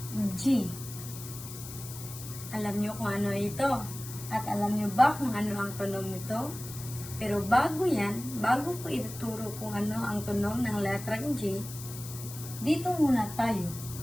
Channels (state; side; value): noise; left; hiss, 12 dB below the sound